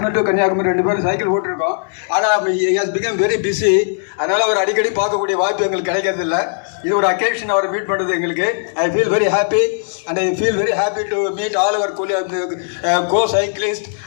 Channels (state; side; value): silent; right; 68 dB below the other